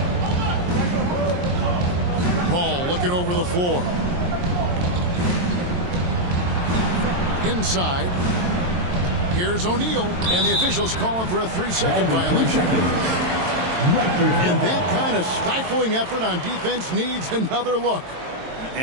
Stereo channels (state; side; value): late; left; 22 ms